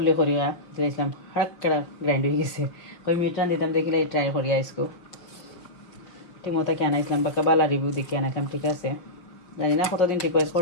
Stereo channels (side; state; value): right; late; 5.5 ms